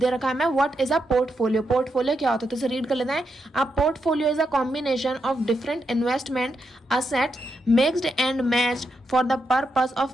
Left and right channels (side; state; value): both; normal; correlation 0.83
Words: रखा है हमें what is a portfolio. Portfolio क्या होता है तो इसे रीड कर लेते हैं। A portfolio is a combination of different investment assets mixed and matched for the purpose